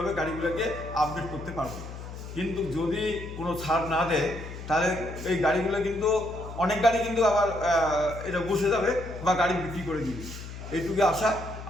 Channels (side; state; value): left; noise; hum, 11 dB below the sound